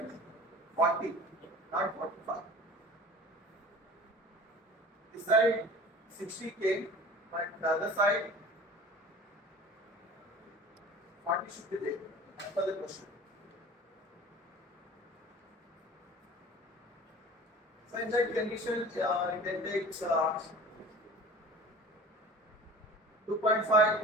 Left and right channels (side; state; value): both; normal; correlation 0.41